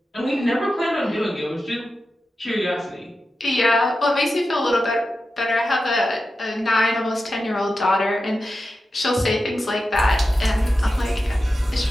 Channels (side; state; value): both; normal; correlation 0.92